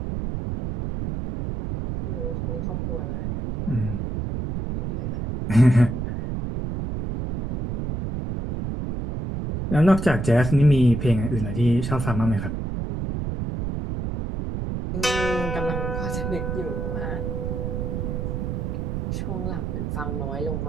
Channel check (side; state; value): right; noise; rumble, 3 dB below the sound